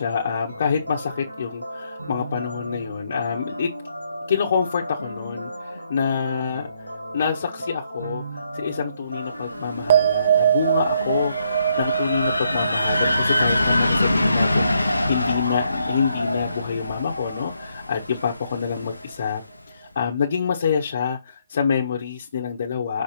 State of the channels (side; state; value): both; inverted; correlation -0.74